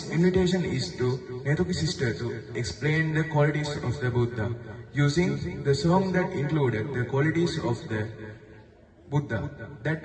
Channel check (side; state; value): both; identical; correlation 1.00